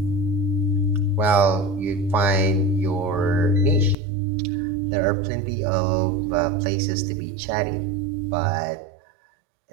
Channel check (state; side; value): drops out; left; at 4.0 s